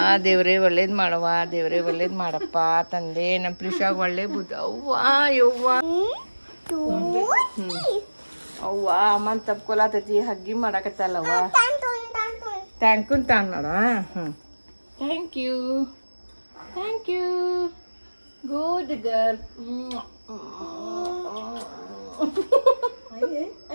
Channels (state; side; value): inverted; both; correlation -1.00